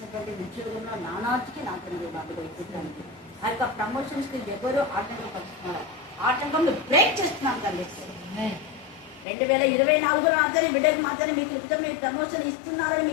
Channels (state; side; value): drops out; right; at 9.2 s